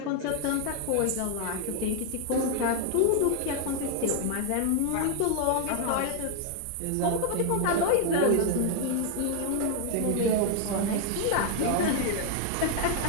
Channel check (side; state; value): both; different; correlation 0.00